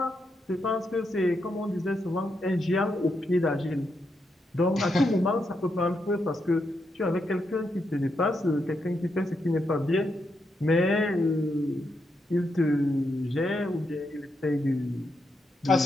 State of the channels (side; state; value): both; normal; correlation 0.82